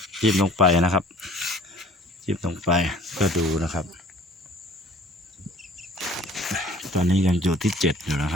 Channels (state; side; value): normal; both; correlation 0.51